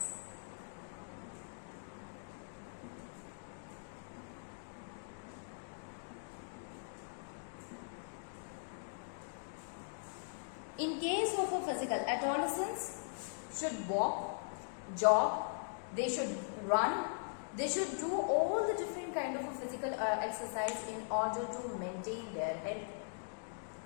In case of a physical, adolescents should walk, jog, they should run, they should do all the different kind of a physical exercise in order to maintain their health.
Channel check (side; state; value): right; silent; digital silence